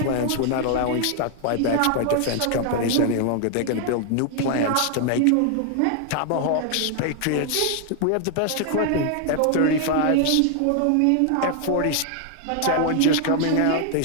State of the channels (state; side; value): different; both; correlation 0.00